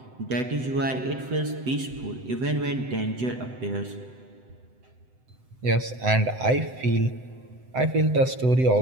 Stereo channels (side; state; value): left; late; 7.9 ms